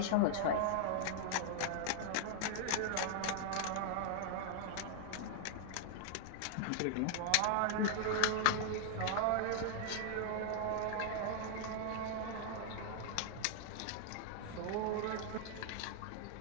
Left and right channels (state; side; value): different; both; correlation -0.01